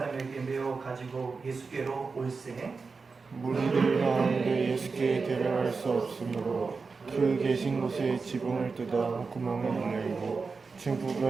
메어 가지고 예수께로 올세 무리들 가운데 예수께 데려갈 수 없으므로 그 계신 곳에 지붕을 뜯어 구멍을 열고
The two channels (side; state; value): left; quieter; 4.6 dB